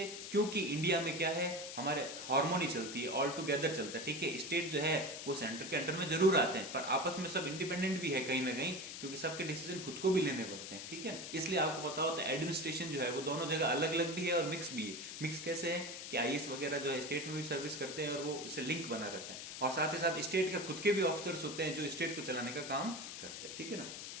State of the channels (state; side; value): noise; left; hiss, 8 dB below the sound